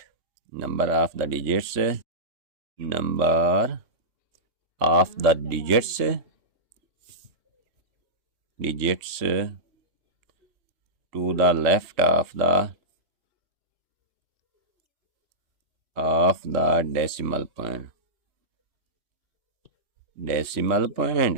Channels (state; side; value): late; left; 3.6 ms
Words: Number of the digits, number of the digits to the left of the decimal point